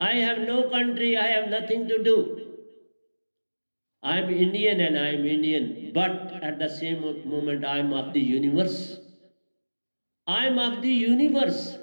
I have no country, I have nothing to do. I am Indian and I am Indian, but at the same moment I am of the universe. I am of the universe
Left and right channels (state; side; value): inverted; both; correlation -1.00